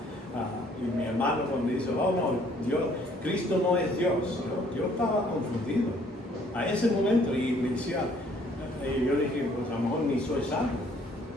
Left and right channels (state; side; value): normal; both; correlation 0.61